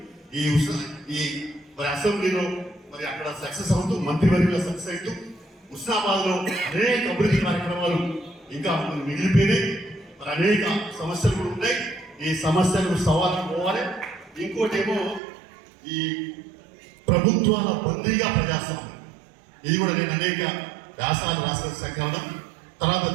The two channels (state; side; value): drops out; left; at 15.2 s